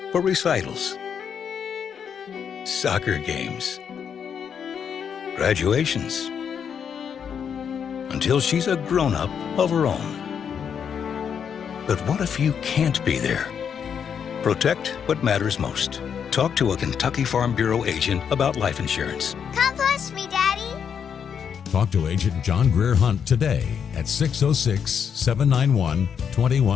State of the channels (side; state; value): right; quieter; 7.5 dB